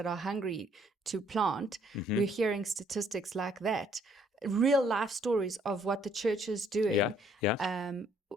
are hungry to plant. We're hearing statistics like that, real life stories of what the church is doing.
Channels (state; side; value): normal; both; correlation 0.65